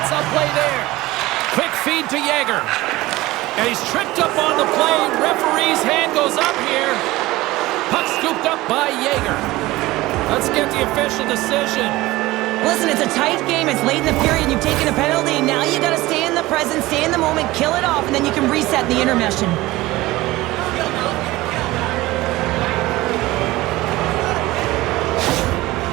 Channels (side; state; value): left; quieter; 18.7 dB